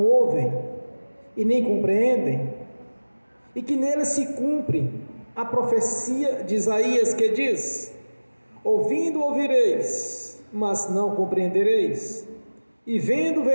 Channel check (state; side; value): inverted; both; correlation -1.00